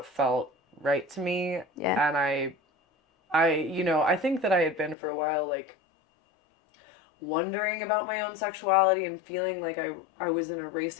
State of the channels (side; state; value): right; drops out; at 5.0 s